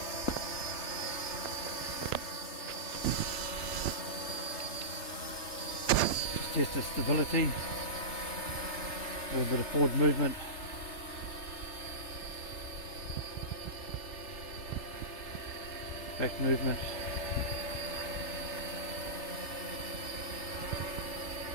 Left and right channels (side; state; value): right; late; 3.3 ms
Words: Test its stability. A little bit of forward movement. Back movement.